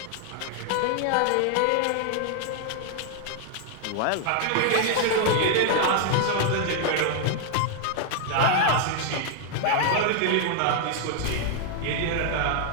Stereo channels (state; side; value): different; both; correlation 0.00